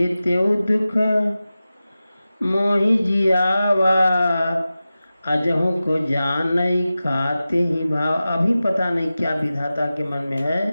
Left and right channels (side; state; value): both; inverted; correlation -0.95